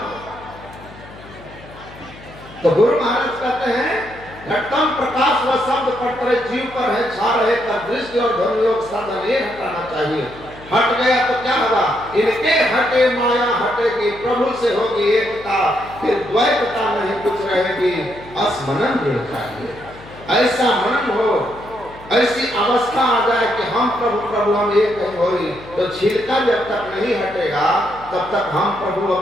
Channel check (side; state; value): left; noise; hum, 19 dB below the sound